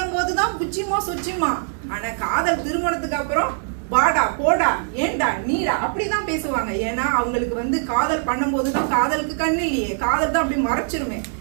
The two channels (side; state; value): left; silent; 64 dB below the other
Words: போதுதான் புச்சிமா சுச்சிமா. ஆனா காதல் திருமணத்துக்கு அப்புறம் வாடா போடா ஏண்டா நீடா அப்படிதான் பேசுவாங்க. ஏன்னா அவங்களுக்கு வந்து காதல் பண்ணும் போதுதான் காதலுக்கு கண்ணு இல்லையே, காதல் தான் அப்படி மறைச்சிருமே.